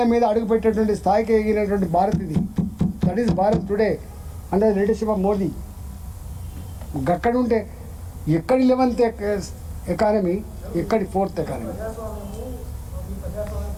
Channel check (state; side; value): identical; both; correlation 1.00